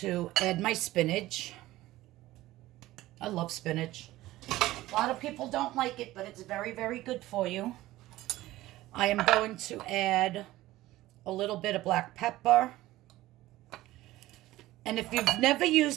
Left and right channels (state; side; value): quieter; left; 16.7 dB